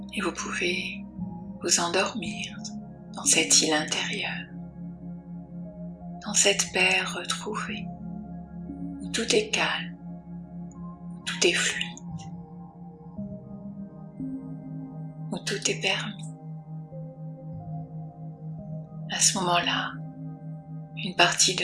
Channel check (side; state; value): both; identical; correlation 1.00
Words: Et vous pouvez vous endormir dans cette île intérieure, dans cette paix retrouvée, où tout est calme, où tout est fluide, où tout est permis. À ce moment-là, une partie de